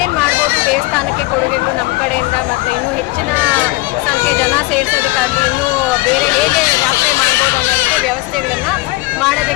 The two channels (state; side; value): quieter; right; 21.6 dB